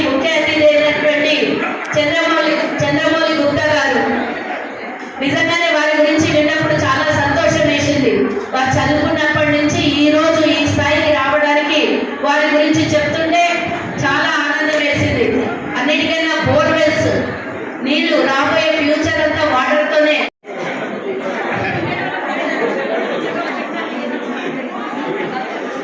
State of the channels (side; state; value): both; identical; correlation 1.00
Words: ముఖ్య అతిథి అయినటువంటి చంద్రమౌళి గుప్తా గారు, నిజంగానే వారి గురించి విన్నప్పుడు చాలా సంతోషం వేసింది. వారు చదువుకున్నప్పటి నుంచి ఈ రోజు ఈ స్థాయికి రావడానికి వారి గురించి చెప్తుంటే చాలా ఆనందం వేసింది. అన్నిటికైనా బోర్వెల్స్ నీళ్లు రాబోయే ఫ్యూచర్ అంతా వాటర్తోనే.